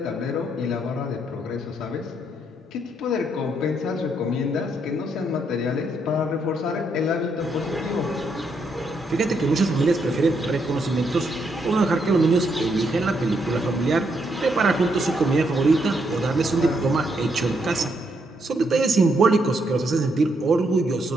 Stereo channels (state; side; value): normal; both; correlation 0.76